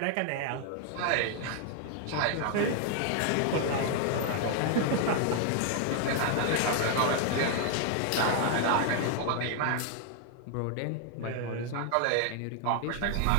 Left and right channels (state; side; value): different; both; correlation 0.00